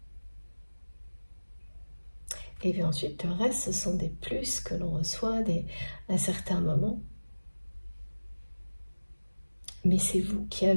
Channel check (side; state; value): both; inverted; correlation -1.00